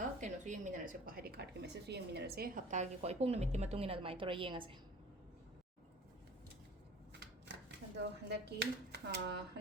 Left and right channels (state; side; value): normal; both; correlation 0.44